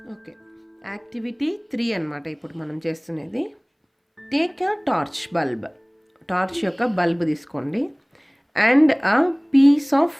ఓకే, యాక్టివిటీ 3 అన్నమాట ఇప్పుడు మనం చేస్తున్నది. Take a torch bulb, torch యొక్క బల్బ్ తీసుకోండి. And a piece of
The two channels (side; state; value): both; identical; correlation 1.00